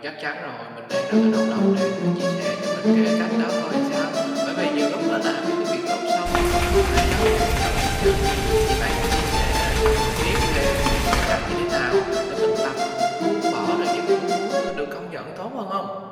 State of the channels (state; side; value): identical; both; correlation 1.00